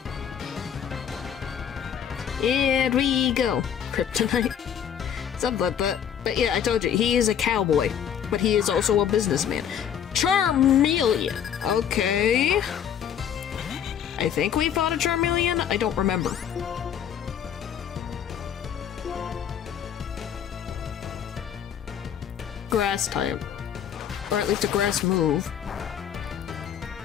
Here we go. Kryptonite. Something like that. But yeah, I told you, he is a cowboy. But he is also a businessman. Charmeleon! Okay. I think we fought a Charmeleon? I don't remember. Grass type. Or at least a grass move.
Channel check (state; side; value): quieter; right; 8.9 dB